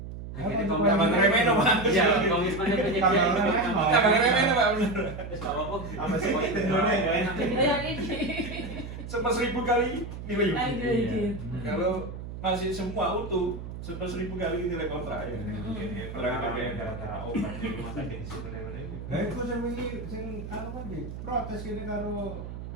Akhirnya Apa Tambah ngeremehin, Pak. Iya, komitmennya penyedia Tambah itu ngeremehin, Pak. Tambah ngeremehin, Pak, bener. Terus nggak apa-apa. Apa sih Indonesia ya? Jadi yang ini. Sama 1000 kali nilai unit. Lanjut. Kalau masih semua utuh 100.000 kali nilai kontrak ya. Gara-gara obat di rumah sakit di situ ini. Lah iku sing wingi sing anu kan iki protes kene karo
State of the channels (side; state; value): right; noise; hum, 9 dB below the sound